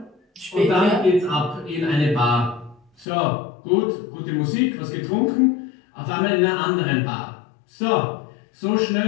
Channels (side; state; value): right; drops out; at 3.1 s